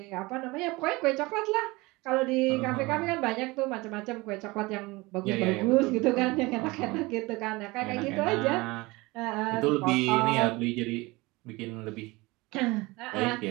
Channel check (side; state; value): left; quieter; 22.8 dB